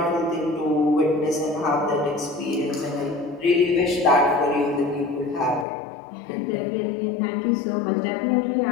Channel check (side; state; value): right; drops out; at 5.7 s